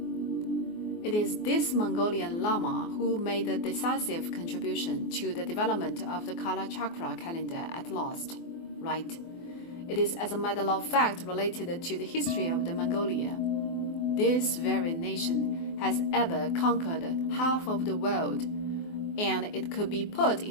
It is this Mongolian Lama who made a decisive contribution to the development of the Kala Chakra calendar at last, right? It is as a matter of fact related to the history of the Mongolia. This very nation has ever conquered half of the world, and it could be put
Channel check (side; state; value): right; late; 24 ms